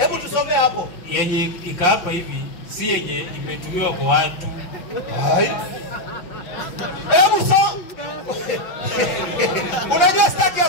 tusome hapo. Yenye ikaapa hivi si yenye imetumiwa kwa watu. Hebu soma. Unajua sitaki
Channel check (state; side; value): late; right; 6.1 ms